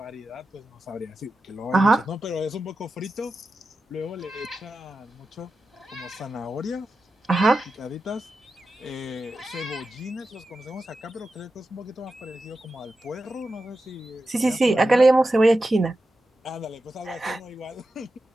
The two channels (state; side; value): normal; both; correlation 0.91